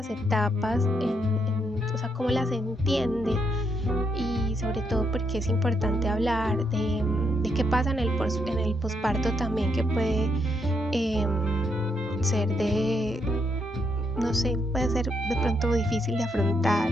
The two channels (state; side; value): normal; both; correlation 0.77